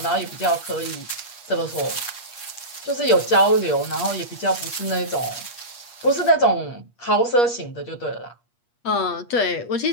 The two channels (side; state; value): right; late; 8.4 ms